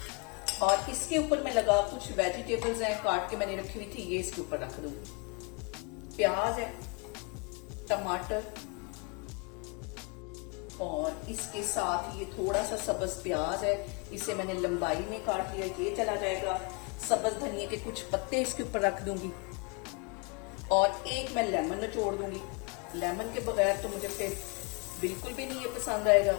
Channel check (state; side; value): quieter; right; 32.4 dB